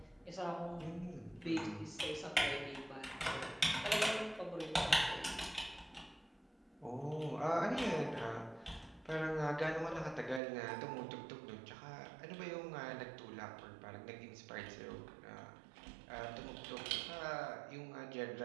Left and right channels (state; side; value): drops out; left; at 10.4 s